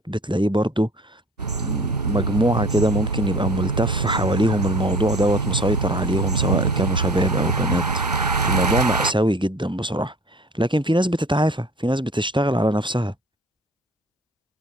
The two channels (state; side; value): normal; both; correlation 0.45